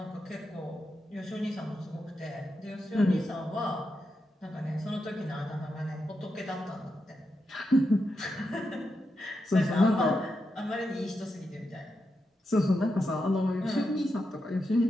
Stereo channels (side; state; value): both; normal; correlation 0.86